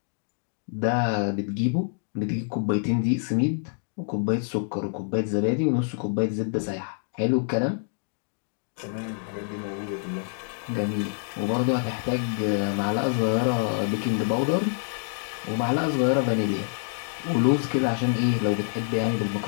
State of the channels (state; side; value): silent; right; 60 dB below the other